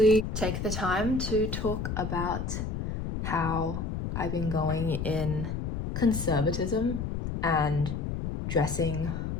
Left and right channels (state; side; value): noise; left; rumble, 4 dB below the sound